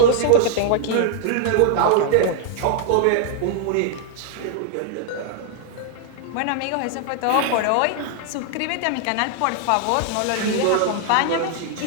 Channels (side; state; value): both; different; correlation 0.00